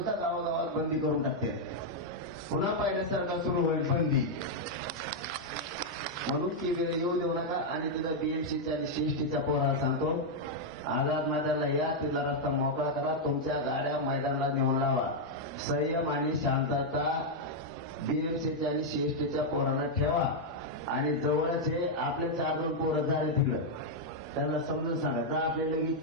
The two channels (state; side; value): normal; both; correlation -0.02